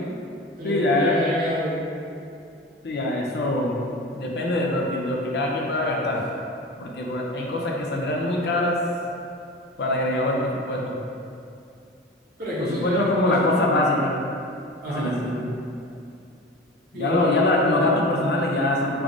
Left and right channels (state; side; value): normal; both; correlation 0.32